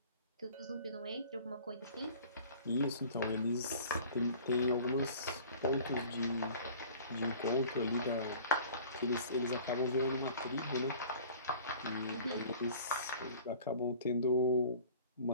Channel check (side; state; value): both; inverted; correlation -0.45